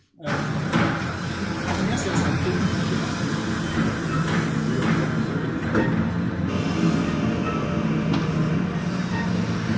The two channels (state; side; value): identical; both; correlation 1.00